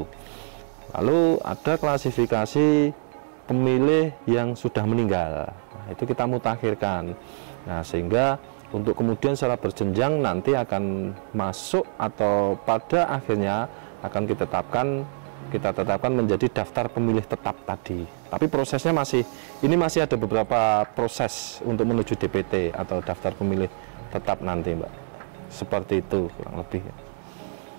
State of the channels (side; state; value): left; silent; digital silence